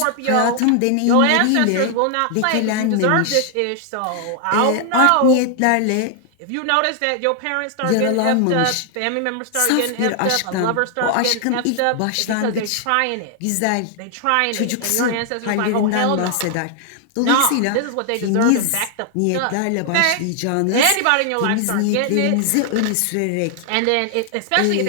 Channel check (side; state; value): both; different; correlation 0.00